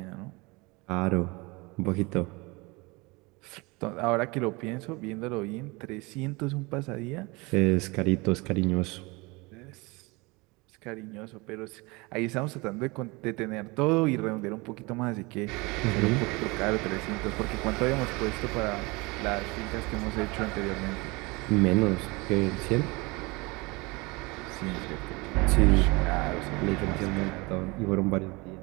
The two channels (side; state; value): left; quieter; 25.5 dB